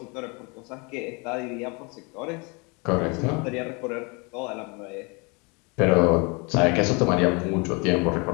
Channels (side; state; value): right; quieter; 30.3 dB